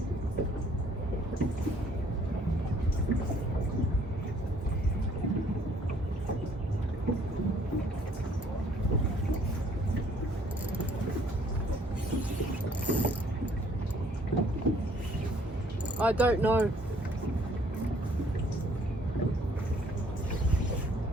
I don't know.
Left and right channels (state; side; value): normal; both; correlation 0.61